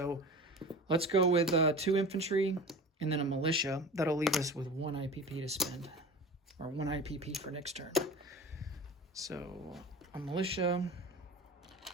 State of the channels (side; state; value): both; normal; correlation 0.35